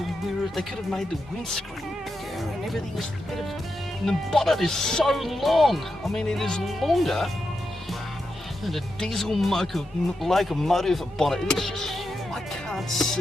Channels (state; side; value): normal; both; correlation 0.87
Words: the mirror, they could have made the windscreen bigger, and everything is a bit of, and the bonnet is so long. I mean, it is longer than a diesel locomotive bonnet. It's just, I can't